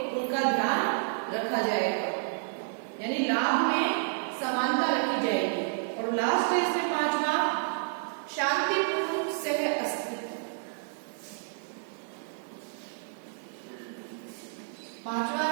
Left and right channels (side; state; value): left; silent; digital silence